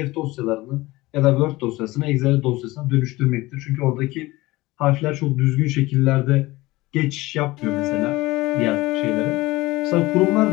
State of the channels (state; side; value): quieter; right; 19.9 dB